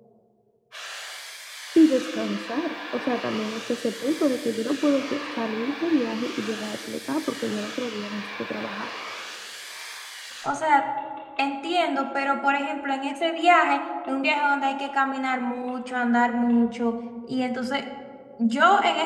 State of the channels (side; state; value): both; identical; correlation 1.00